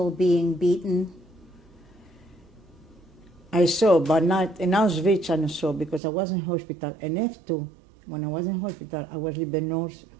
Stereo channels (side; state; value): left; drops out; at 6.0 s